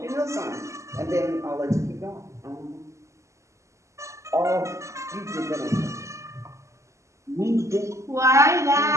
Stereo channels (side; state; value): left; late; 0.14 ms